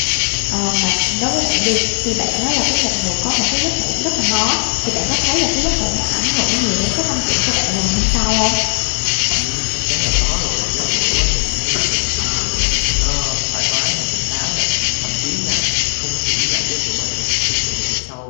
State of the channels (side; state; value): right; silent; 63 dB below the other